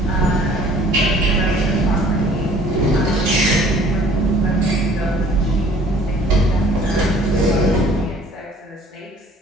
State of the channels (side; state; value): both; normal; correlation 0.53